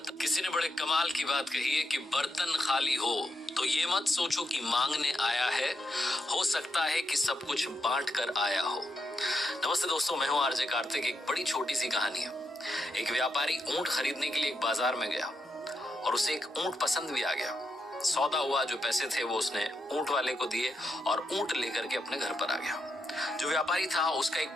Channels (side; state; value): both; normal; correlation 0.83